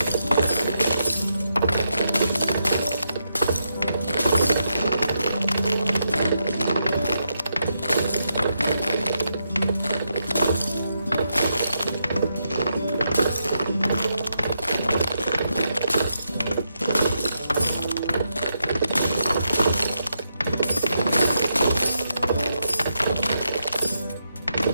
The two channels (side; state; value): both; inverted; correlation -0.82